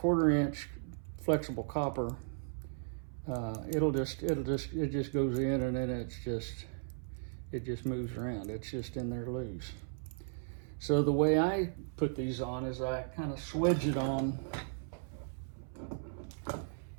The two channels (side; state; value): left; silent; 54 dB below the other